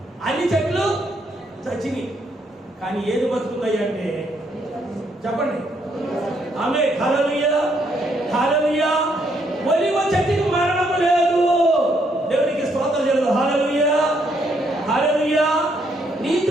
చచ్చినాయి. కానీ ఏది బతుకున్నాయి అంటే చెప్పండి. ఆమె హల్లెలూయా హల్లెలూయా. ఒలీవ చెట్టుకి మరణము లేదు. దేవునికి స్తోత్రం చేయలేదు. హల్లెలూయా హల్లెలూయా.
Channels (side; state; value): both; normal; correlation 0.73